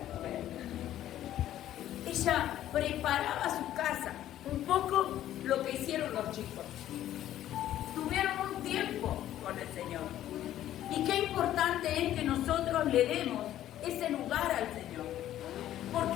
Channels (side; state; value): right; quieter; 12.5 dB